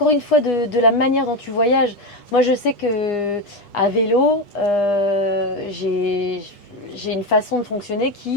une fois de la manière dont tu voyages. Moi, je sais que à vélo, j'ai une façon de fonctionner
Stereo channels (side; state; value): right; late; 8.2 ms